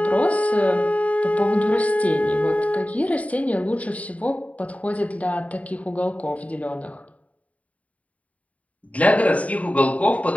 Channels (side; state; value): right; late; 0.068 ms